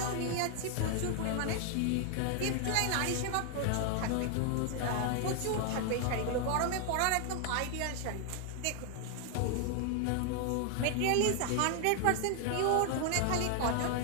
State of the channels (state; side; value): different; both; correlation 0.00